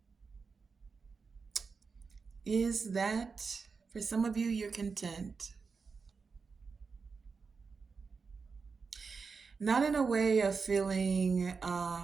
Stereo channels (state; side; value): quieter; left; 5.0 dB